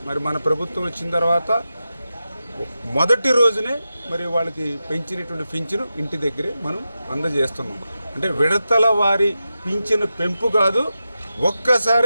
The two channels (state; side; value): inverted; both; correlation -0.91